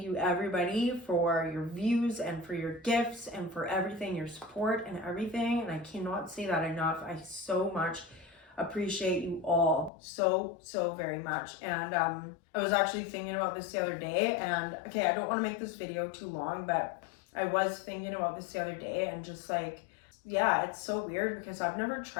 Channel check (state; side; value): drops out; right; at 9.9 s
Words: you, everybody, for your views and for your gifts and for everything, your support and everything. And I cannot say that enough. I so much appreciate you all so very much. And I was actually thinking about this the other day, and okay, I don't want to make this video too long, but I was thinking about this the other day, and just like, yeah, it's so weird because I've never